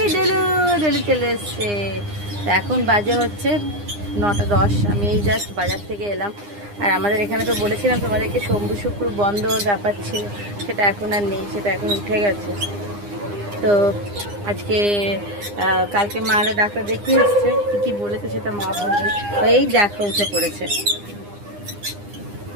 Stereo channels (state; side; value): late; left; 9.8 ms